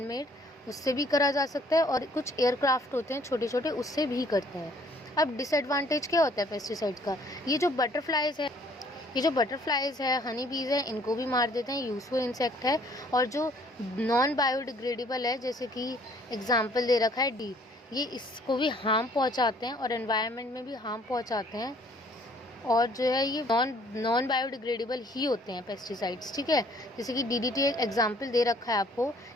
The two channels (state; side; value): normal; both; correlation 0.59